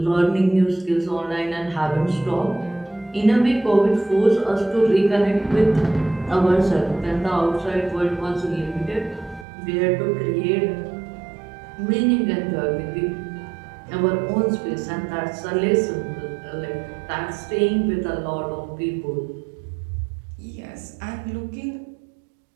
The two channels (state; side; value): drops out; left; at 9.5 s